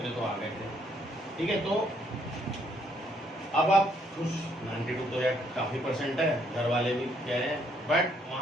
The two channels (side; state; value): both; normal; correlation 0.69